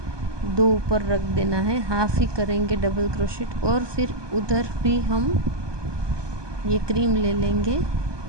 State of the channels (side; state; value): left; late; 1.2 ms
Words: 2 ऊपर रख देना है, हाफ ही करेंगे डबल क्रोशेट। और फिर उधर भी हम ये क्रीम ले लेंगे